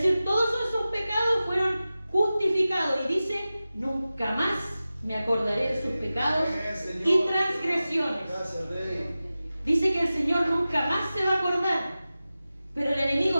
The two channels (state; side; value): inverted; both; correlation -0.95